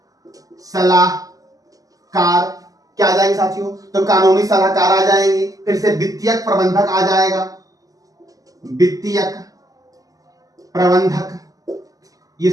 सलाहकार क्या आ जाएंगे साथियों? तो कानूनी सलाहकार आ जाएंगे। फिर से वित्तीयक प्रबंधक आ जाएगा। वित्तीयक प्रबंधक। ये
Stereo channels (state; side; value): late; left; 0.17 ms